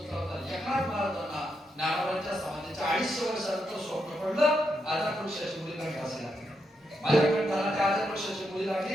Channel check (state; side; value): normal; both; correlation 0.82